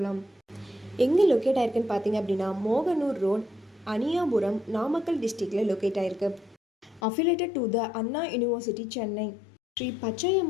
எங்கே லொக்கேட் ஆயிருக்குன்னு பார்த்தீங்க அப்படின்னா, மோகனூர் ரோட், அனியாபுரம், நாமக்கல் டிஸ்ட்ரிக்டில் லொக்கேட் ஆயிருக்கு. Affiliated to the Anna university, Chennai. Shri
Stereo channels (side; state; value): right; drops out; at 7.0 s